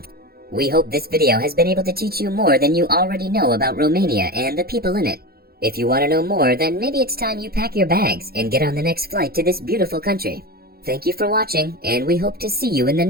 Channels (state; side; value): late; left; 0.45 ms